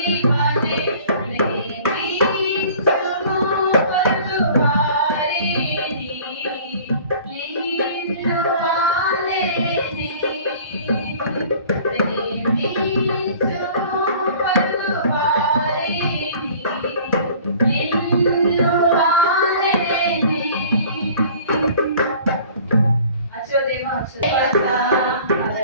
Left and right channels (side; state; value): both; inverted; correlation -0.48